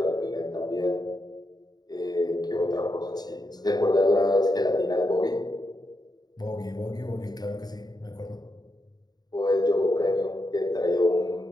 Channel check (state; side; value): late; right; 0.19 ms